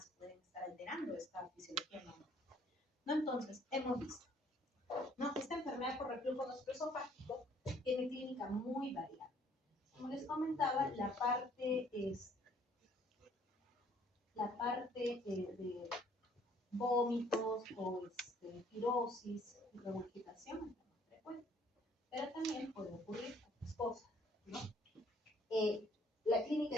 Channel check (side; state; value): both; normal; correlation 0.61